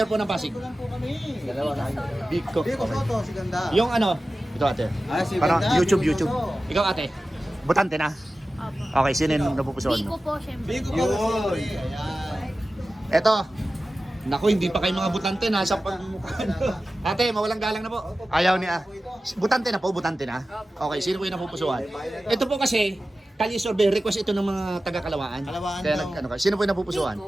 po ng Pasig. Ito lang po kami. Dalawa na. Biko. Biko, Soto, si Ganda. Yung ano, ito ate. Ah, si Parang Ganda, YouTube. Biko Soto. Ikaw ate. Butante na. Opo. Okay, sino yung napupusuan Biko mo? po, syempre. Biko, Yun. Ayan. Eto. Naku, hindi pa kayo mga butante. Nasa pagmukha. Ate, mawalang galang na po. Ayaw niya. Butante na po, butante na. Okay, sino po yung napupusuan? Ito po kasi, Kalye survey, request ito ng mga taga-Kalawaan. Kalawaan Kaya daw. ano ka? Sino po yung napupusuan?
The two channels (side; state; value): both; normal; correlation 0.95